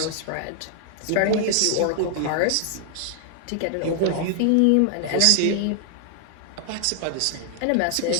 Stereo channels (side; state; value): both; different; correlation 0.00